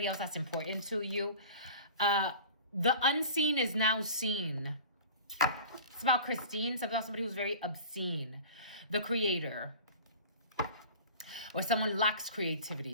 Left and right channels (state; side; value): inverted; both; correlation -0.39